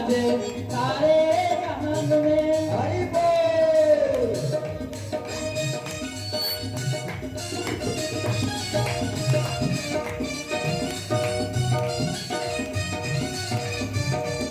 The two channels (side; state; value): both; identical; correlation 1.00